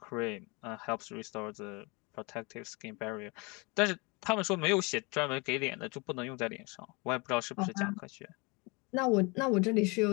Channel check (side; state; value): right; quieter; 28.0 dB